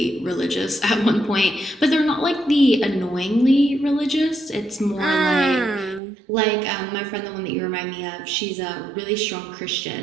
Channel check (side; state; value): left; drops out; at 6.0 s